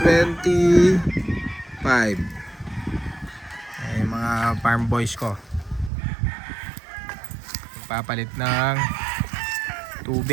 25. Ay, mga farm boys ko papalit ng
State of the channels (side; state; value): left; drops out; at 5.9 s